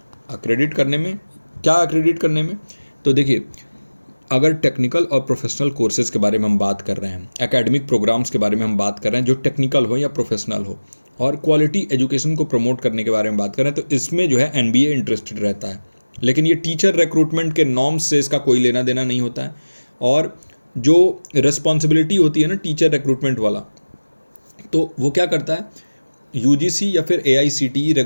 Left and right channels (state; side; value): inverted; both; correlation -1.00